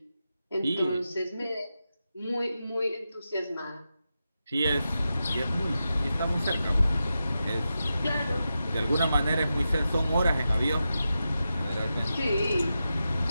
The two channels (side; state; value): both; inverted; correlation -0.90